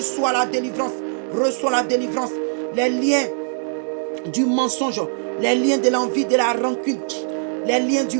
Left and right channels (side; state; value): left; silent; digital silence